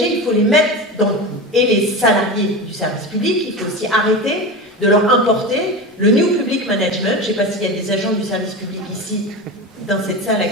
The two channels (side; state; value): both; normal; correlation 0.25